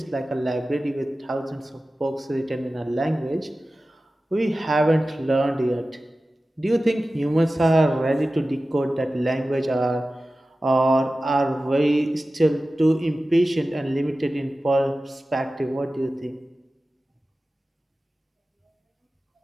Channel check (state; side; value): normal; both; correlation 0.95